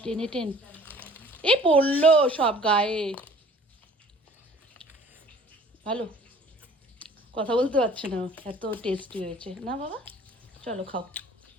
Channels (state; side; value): normal; both; correlation 0.51